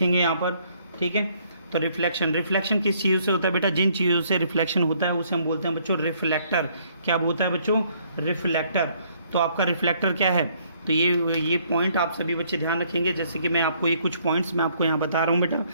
यहाँ पर, ठीक है। तो रिफ्लेक्शन किस चीज़ों से होता है बेटा, जिन चीज़ों से रिफ्लेक्शन होता है उसे हम बोलते हैं बच्चों रिफ्लेक्टर। क्या बोलता है बच्चों, रिफ्लेक्टर। तो आपका रिफ्लेक्टर क्या है, तो ये पॉइंट आप सभी बच्चे ध्यान रखेंगे। जैसे कि मैं आपको ये कुछ पॉइंट्स मैं आपको यहाँ बता रहा हूँ बेटा।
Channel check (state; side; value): inverted; both; correlation -0.65